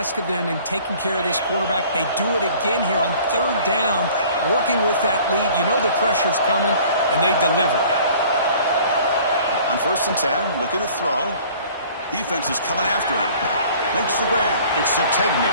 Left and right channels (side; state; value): both; inverted; correlation -0.51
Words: of them in taking care of this quarterback. They do it again here on third down, working with that lead. You know the pressure's coming, and they deliver. On 1st and 10, looking to throw. Defense is coming after him. Makes the grab. It's Sategna.